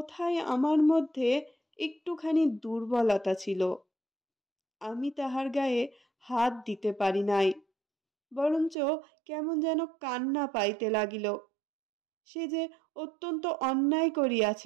আমার মধ্যে একটুখানি দুর্বলতা ছিল, আমি তাহার গায়ে হাত দিতে পারি নাই, বরঞ্চ কেমন যেন কান্না পাইতে লাগিল। সে যে অত্যন্ত অন্যায়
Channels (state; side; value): drops out; left; at 8.8 s